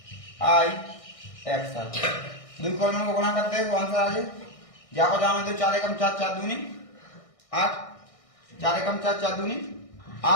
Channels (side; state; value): right; late; 1.6 ms